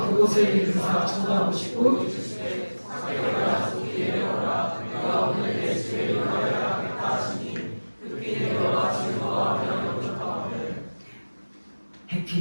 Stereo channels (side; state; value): both; inverted; correlation -1.00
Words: 그곳에 이르사 쳐다보시고 삭개오야 속히 내려오라 내가 오늘 예수의 일하여야 하겠다 하시니 급히 내려와 즐거워하며 영접하오늘.